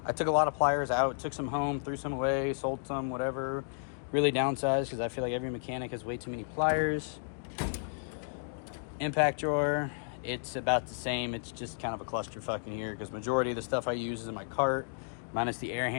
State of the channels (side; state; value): right; silent; digital silence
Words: took a lot of pliers out, took some home, threw some away, sold some, whatever. Really downsized because I feel like every mechanic has way too many pliers. Impact drawer, it's about the same. It's just kind of a clusterfuck in here because majority of the stuff I use is in my cart, minus the air